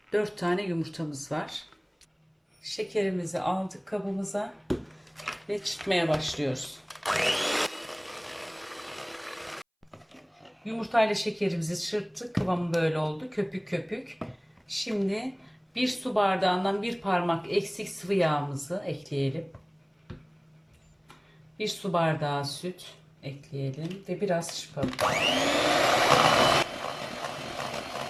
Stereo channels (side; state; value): both; identical; correlation 1.00